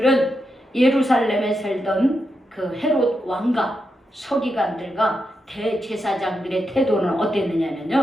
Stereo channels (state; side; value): normal; both; correlation 0.85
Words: 예루살렘에 살던 그 헤롯 왕과 서기관들과 대제사장들의 태도는